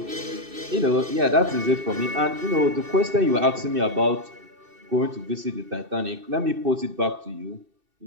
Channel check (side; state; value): left; late; 2.7 ms